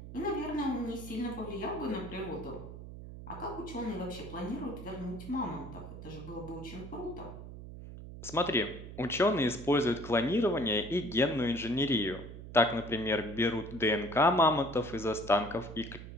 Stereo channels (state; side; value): noise; right; hum, 12 dB below the sound